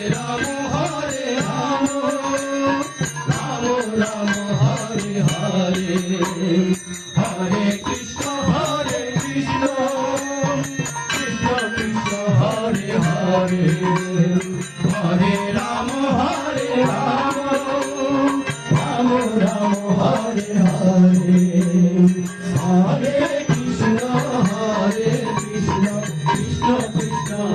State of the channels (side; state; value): both; identical; correlation 1.00